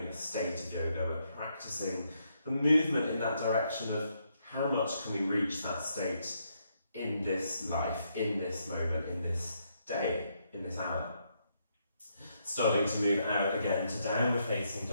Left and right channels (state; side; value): inverted; both; correlation -0.77